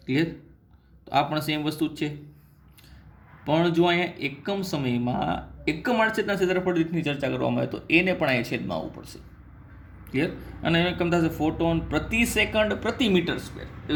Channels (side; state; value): both; identical; correlation 1.00